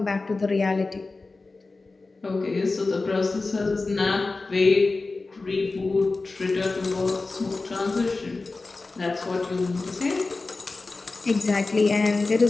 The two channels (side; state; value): right; quieter; 3.6 dB